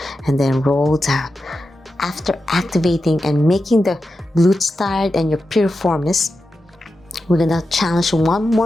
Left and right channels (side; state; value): both; normal; correlation 0.90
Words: And then roll down. After activating and making the glutes tired and your piriformis, we're gonna challenge one